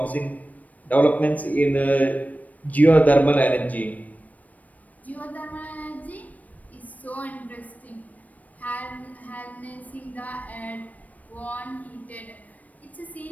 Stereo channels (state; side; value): late; right; 0.073 ms